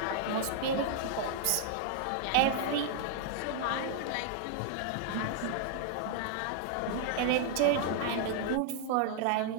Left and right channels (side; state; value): both; different; correlation -0.01